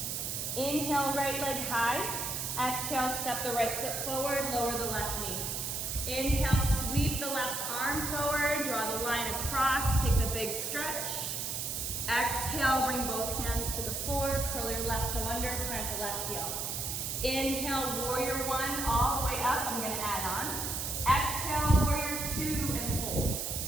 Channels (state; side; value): noise; right; hiss, 3 dB below the sound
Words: Inhale, right leg high. Exhale, step the right foot forward, lower the left knee. Inhale, sweep the left arm forward, draw the line across, take the big stretch. Exhale, bring both hands to the floor, curl your left toe under, plant the left heel. Inhale, warrior one, all the way up. I'm going to add on. Exhale, warrior two, and hold.